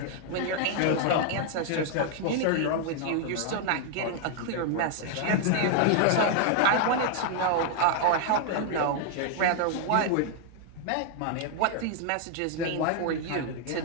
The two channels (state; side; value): different; both; correlation 0.00